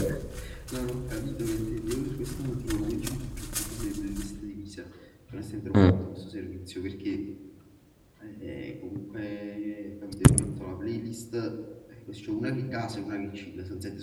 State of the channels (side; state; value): both; identical; correlation 1.00